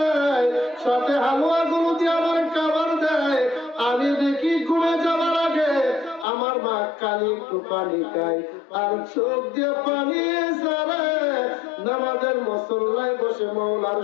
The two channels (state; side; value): drops out; right; at 6.2 s